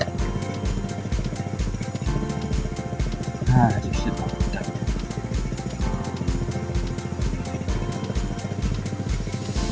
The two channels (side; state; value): both; identical; correlation 1.00